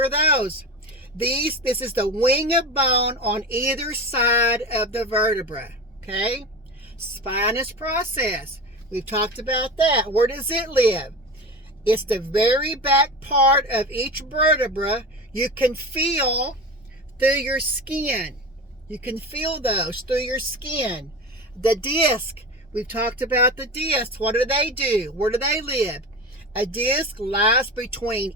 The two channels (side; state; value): both; normal; correlation 0.28